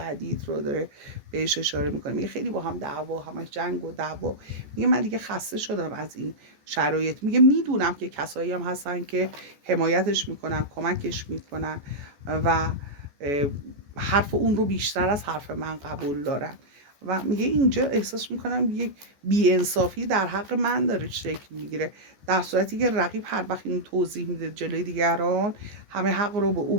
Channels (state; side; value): late; left; 14 ms